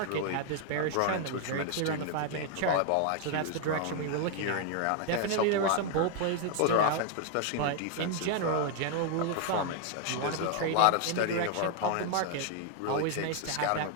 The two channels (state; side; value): different; both; correlation 0.00